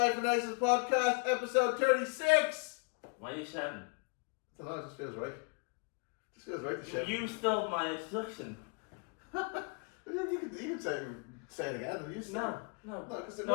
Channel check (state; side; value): quieter; right; 33.5 dB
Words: Analysis Podcast, episode 36! Why are you shouting? I don't know, it just feels right. To shout. You stole my introduction. you can say it again. You say No, because